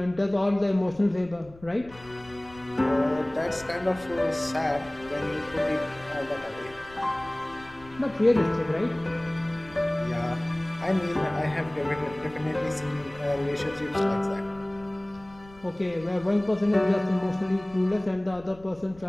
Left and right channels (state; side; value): noise; left; rumble, 22 dB below the sound